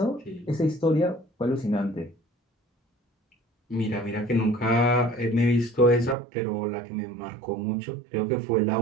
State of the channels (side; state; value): left; drops out; at 6.2 s